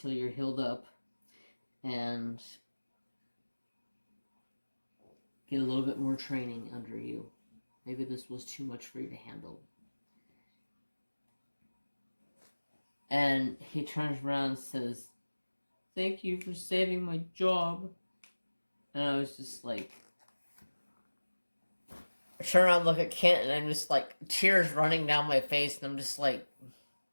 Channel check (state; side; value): inverted; both; correlation -1.00